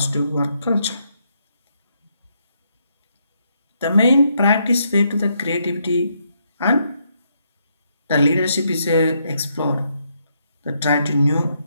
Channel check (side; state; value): both; inverted; correlation -0.76